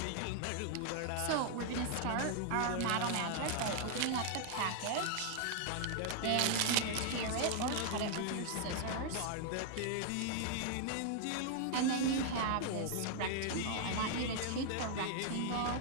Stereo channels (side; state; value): both; different; correlation 0.00